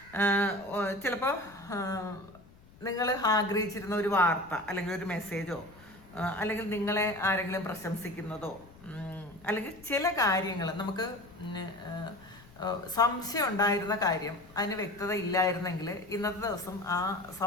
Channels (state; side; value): noise; left; rumble, 23 dB below the sound